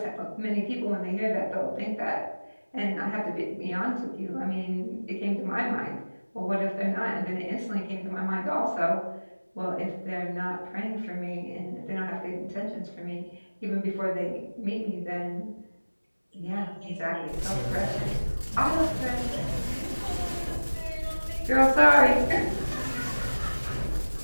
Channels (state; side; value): inverted; both; correlation -1.00